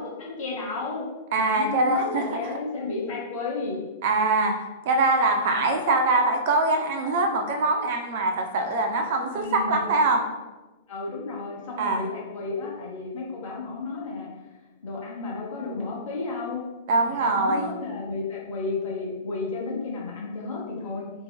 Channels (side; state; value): both; inverted; correlation -0.30